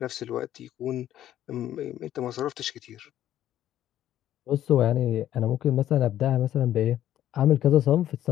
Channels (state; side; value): quieter; right; 12.0 dB